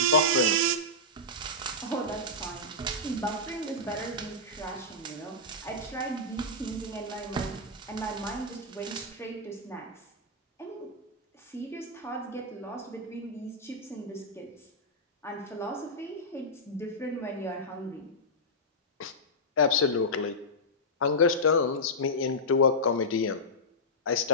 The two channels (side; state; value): both; normal; correlation -0.11